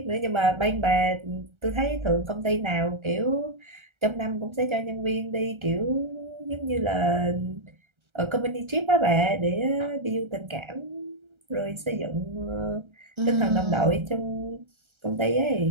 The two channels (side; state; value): left; late; 1.3 ms